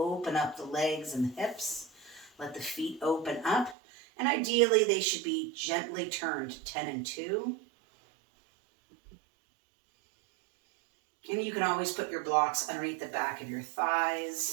up the legs and the hips. Let the feet open up. And ideally, they should be gently turned 10 and 2. And you can always put your blocks underneath the back of your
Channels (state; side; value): drops out; left; at 3.8 s